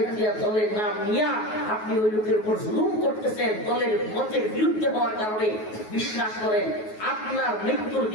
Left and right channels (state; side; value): late; right; 9.4 ms